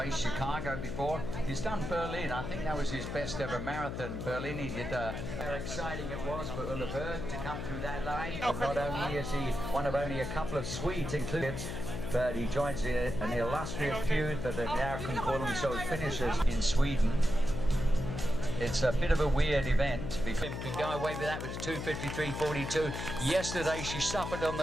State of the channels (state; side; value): noise; left; hum, 5 dB below the sound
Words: Chicago before. He's done Berlin. I think that was his best ever marathon. Berlin, he did how exciting it was for Ulla Berg to come through that line. But not only is he one of only a couple of Swedes included, but he joins an illustrious feud that now can call themselves finishers in Sweden. It's a bit of a weird event because he can go away with that with 2:53.42. Yesterday she suffered on